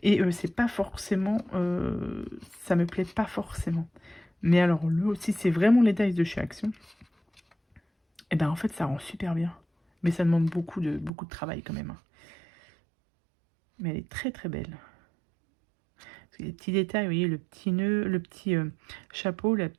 Et c'est pas forcément... ça me plaît pas forcément. Mais alors, si c'est vraiment les dice de chez Action, et ben en fait, ça rend super bien. Mais ça demande beaucoup de travail quand même. Hein. Mais elle est très très belle. Les petits détails, vous voyez, le petit nœud, le petit chapeau, la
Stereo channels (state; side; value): drops out; left; at 11.1 s